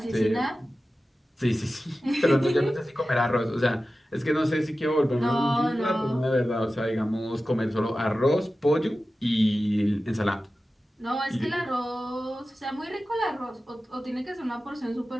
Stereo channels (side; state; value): both; normal; correlation 0.94